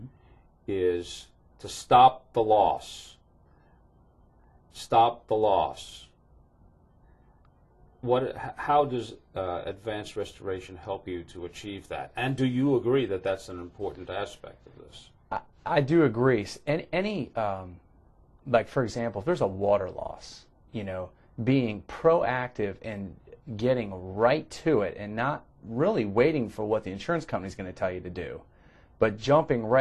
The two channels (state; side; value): identical; both; correlation 1.00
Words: is to stop the loss. Stop the loss. How does Advanced Restoration help you to achieve that? And do you agree that that's an important aspect of this? I do agree. Any like, for example, if there's a water loss, being proactive and getting right to it and not really waiting for what the insurance company is going to tell you to do, but jumping